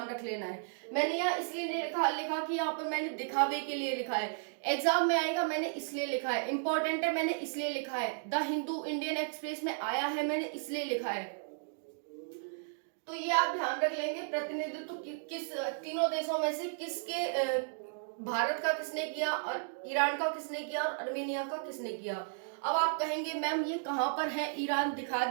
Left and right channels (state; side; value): silent; left; digital silence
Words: रख लेना है। मैंने यहाँ इसलिए लिखा कि यहाँ पर मैंने दिखावे के लिए लिखा है, एग्जाम में आएगा मैंने इसलिए लिखा है, इंपॉर्टेंट है मैंने इसलिए लिखा है, द हिंदू इंडियन एक्सप्रेस में आया है मैंने इसलिए लिखा है। तो ये आप ध्यान रख लेंगे, प्रतिनिधित्व किस तीनों देशों में से किसके, भारत का किसने किया और ईरान का किसने किया और अर्मेनिया का किसने किया। अब आप कहेंगे मैम ये कहाँ पर है ईरान, दिखा